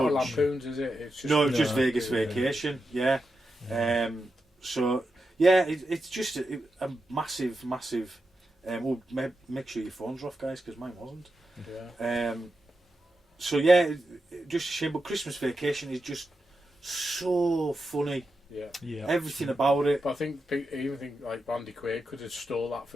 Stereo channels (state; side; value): normal; both; correlation 0.88